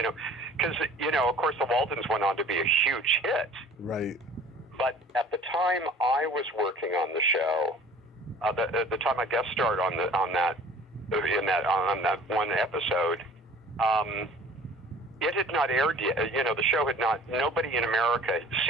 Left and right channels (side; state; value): both; normal; correlation 0.48